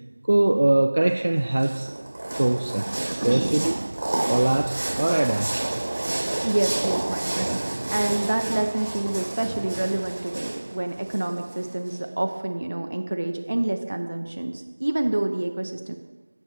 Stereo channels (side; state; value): both; inverted; correlation -1.00